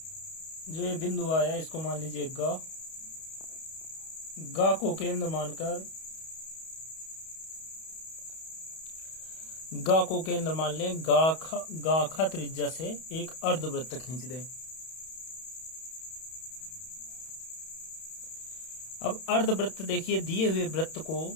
जो ये बिंदु आया इसको मान लीजिए ग। ग को केंद्र मानकर ग को केंद्र मान लें। गाखा त्रिज्या से एक अर्धवृत्त खींच दें। अब अर्धवृत्त देखिए दिए हुए वृत्त को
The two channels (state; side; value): late; right; 31 ms